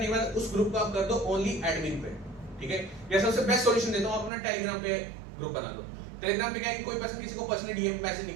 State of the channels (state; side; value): drops out; left; at 4.3 s